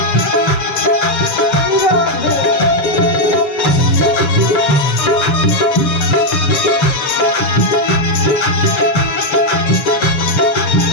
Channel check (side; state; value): right; late; 7.3 ms